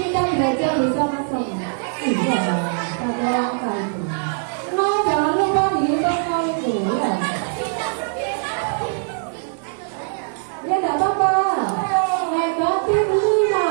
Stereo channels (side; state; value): left; silent; digital silence